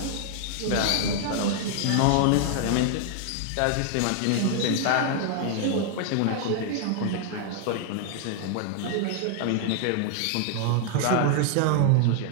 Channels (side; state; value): both; different; correlation 0.00